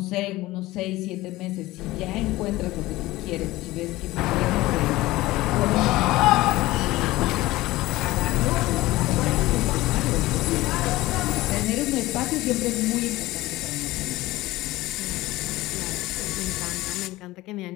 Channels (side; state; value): right; quieter; 18.4 dB